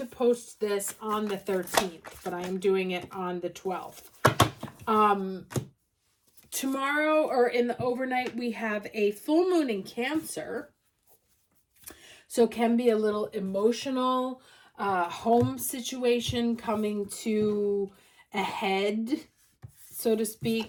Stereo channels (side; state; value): both; identical; correlation 1.00